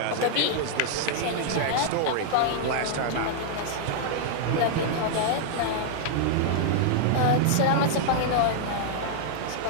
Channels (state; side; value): different; both; correlation -0.01